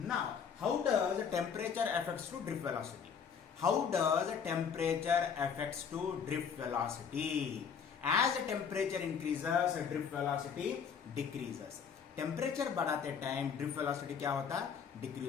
how does the temperature affects to drift velocity? How does the temperature affects to drift velocity? As the temperature increases, drift velocity decreases. Temperature बढ़ाते time drift velocity क्या होता?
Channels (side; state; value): right; quieter; 6.9 dB